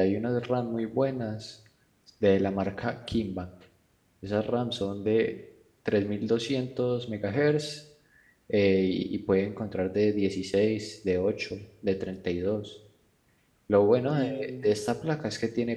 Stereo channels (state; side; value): identical; both; correlation 1.00